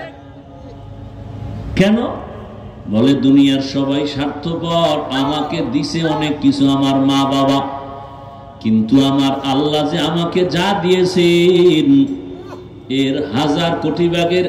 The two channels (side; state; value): both; identical; correlation 1.00